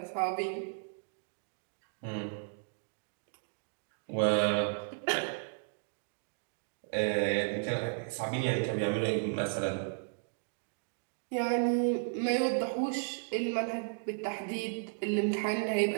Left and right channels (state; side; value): silent; left; digital silence